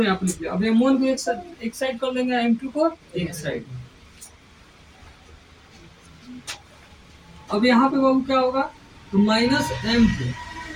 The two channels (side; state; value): both; identical; correlation 1.00